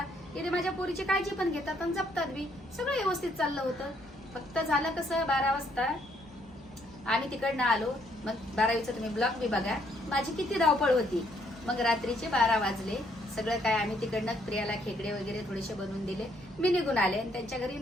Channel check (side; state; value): both; normal; correlation 0.70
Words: की माझ्या पोरीची काळजी पण घेतात आणि जपतात बी, सगळं व्यवस्थित चाललं होतं। फक्त झालं कसं 12 वाजता आम्ही तिकडनं आलो, मग 12वीचा तुम्ही ब्लॉग बी बघा माझी किती धावपळ होती। मग रात्रीचे 12 वाजले, सगळं काय आम्ही तिकडनं प्रियाला खेकडे वगैरे थोडेसे बनवून दिले, मी निघून आले। आणि त्यांच्या घरी